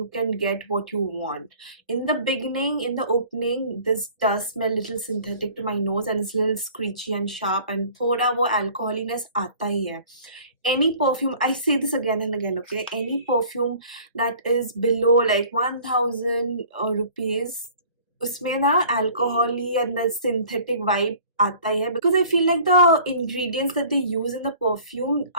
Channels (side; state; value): both; inverted; correlation -0.49